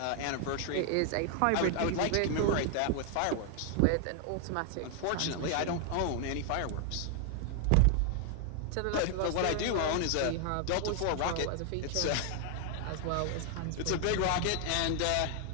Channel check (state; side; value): different; both; correlation 0.00